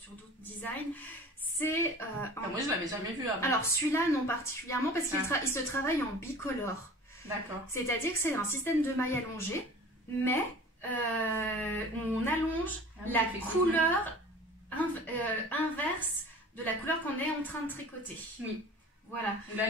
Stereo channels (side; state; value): both; normal; correlation 0.42